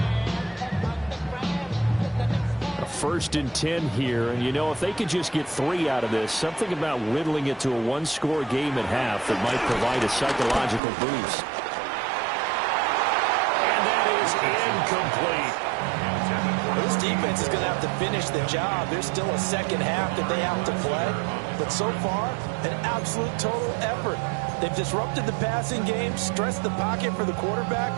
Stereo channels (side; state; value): left; drops out; at 10.8 s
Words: A 1st and 10 here, and you know, if they could just get 3 out of this, something about whittling it to a one-score game at half that might provide a psychological boost. And that is incomplete. This defense is going to have to finish the job. There's still a second half that they have to play, but so far, an absolute total effort. They've disrupted the passing game, stressed the pocket for the quarterback.